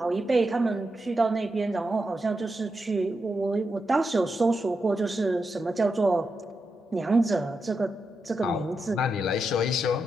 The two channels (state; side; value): normal; both; correlation 0.87